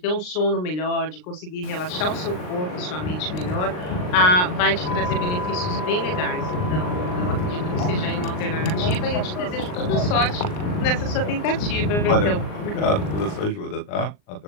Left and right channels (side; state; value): right; late; 39 ms